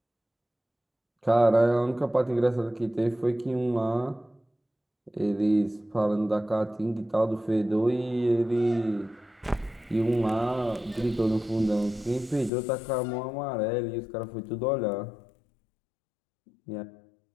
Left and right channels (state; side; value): drops out; right; at 12.5 s